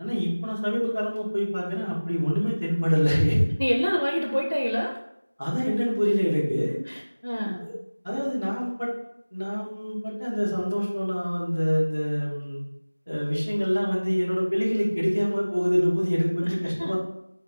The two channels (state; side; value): inverted; both; correlation -1.00